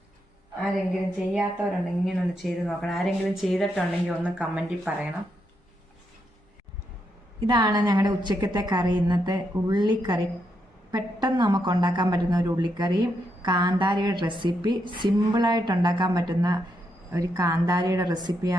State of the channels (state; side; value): normal; both; correlation 0.81